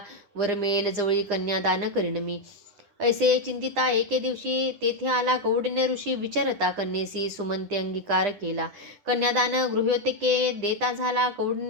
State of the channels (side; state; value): left; late; 9.9 ms